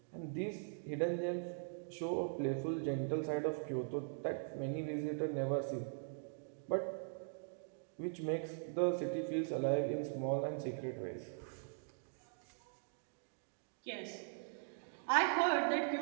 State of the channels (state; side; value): silent; left; digital silence